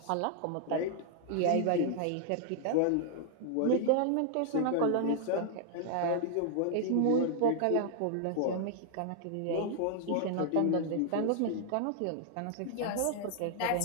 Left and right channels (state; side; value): different; both; correlation 0.00